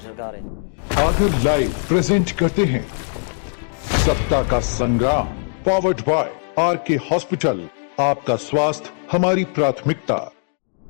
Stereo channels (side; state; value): right; silent; digital silence